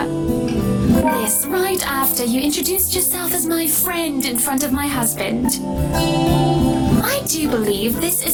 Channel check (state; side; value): identical; both; correlation 1.00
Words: This right after you introduced yourself as my friend in front of my husband. I do believe this